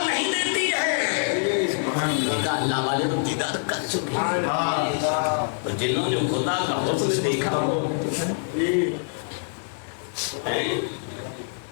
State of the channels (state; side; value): silent; right; 60 dB below the other